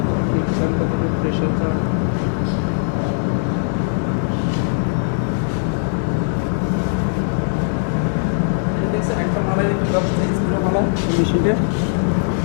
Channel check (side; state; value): right; silent; 66 dB below the other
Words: হিট চান, কতটুকু প্রেশার চান। এই দেখছেন একটা মালের একটু ব্যবস্থা ছিল মালা মেশিনটা,